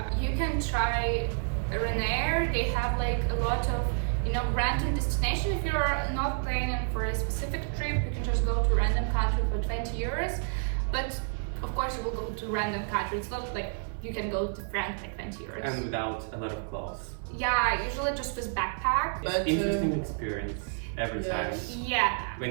you can try Ryanair. They have a lot of random destination. If you're not planning for a specific trip, you can just go to random country for 20 euros. But of course, you will go to random country. It's not you can go to France for 20 euros. And without a lot of clothes. Yeah, usually just with backpack. It's But, interesting experience every yes. time Yeah. when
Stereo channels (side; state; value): left; silent; digital silence